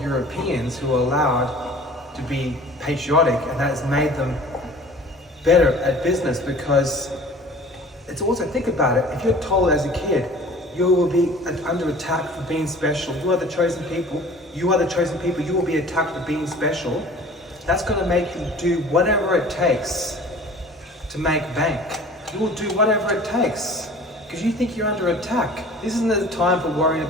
Europeans who are allowed to be patriotic, and that has made them better at business. Because it's also, think about it, if you're told as a kid you will be under attack for being special, you are the chosen people, you are the chosen people, you will be attacked for being special, that's going to make you do whatever it takes to make bank. You will do whatever it takes because you think you're under attack. This isn't the time for worrying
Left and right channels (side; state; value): both; normal; correlation 0.45